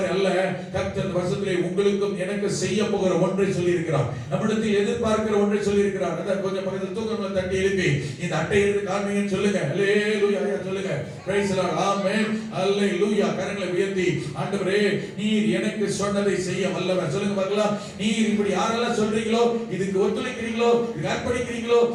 அல்ல, கர்த்தர் வருஷத்திலே உங்களுக்கும் எனக்கு செய்ய போகிற ஒன்றை சொல்லி இருக்கிறார், நம்மிடத்தில் எதிர்பார்க்கிற ஒன்றை சொல்லி இருக்கிறார். அத கொஞ்சம் பக்கத்துல தூக்கங்களை தட்டி எழுப்பி இந்த அட்டை எடுத்து காண்பீங்கன்னு சொல்லுங்க. அல்லேலூயா சொல்லுங்க. Praise the Lord. ஆமென். அல்லேலூயா. கரங்களை உயர்த்தி, ஆண்டவரே நீர் எனக்கு சொன்னதை செய்ய வல்லவர். சொல்லுங்க பார்க்கலாம். நீர் இப்படி யாரெல்லாம் சொல்றீங்களோ, இதுக்கு ஒத்துழைக்கிறீங்களோ, இதுக்கு அர்ப்பணிக்கிறீங்களோ,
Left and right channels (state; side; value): identical; both; correlation 1.00